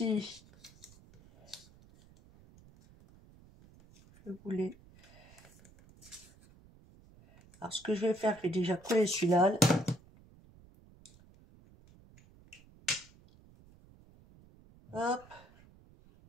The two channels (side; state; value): right; noise; rumble, 25 dB below the sound